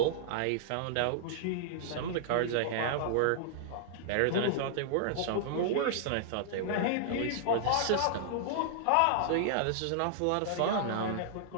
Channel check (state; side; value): different; both; correlation -0.01